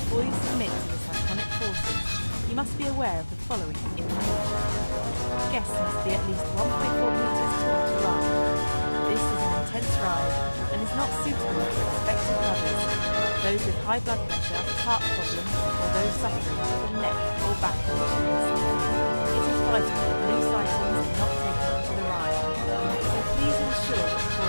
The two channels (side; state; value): both; inverted; correlation -1.00